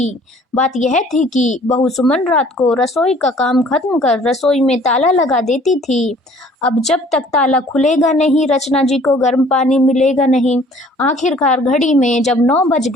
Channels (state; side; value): normal; both; correlation 0.55